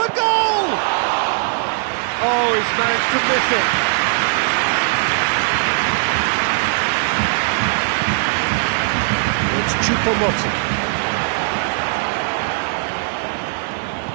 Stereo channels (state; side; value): silent; left; digital silence